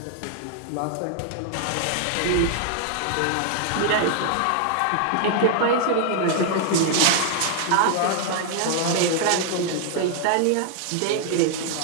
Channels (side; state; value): both; different; correlation 0.00